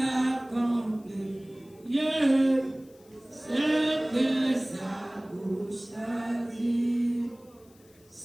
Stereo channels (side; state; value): left; noise; hiss, 29 dB below the sound